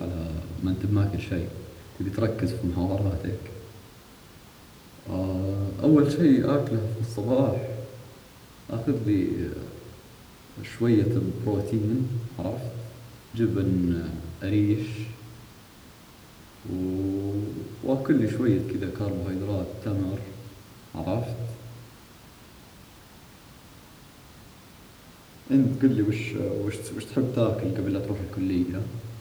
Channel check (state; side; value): identical; both; correlation 1.00